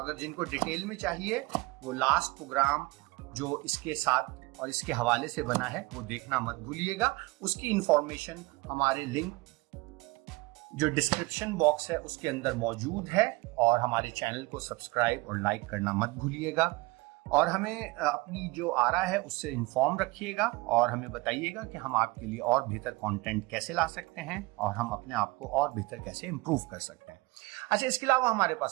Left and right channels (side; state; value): left; quieter; 23.6 dB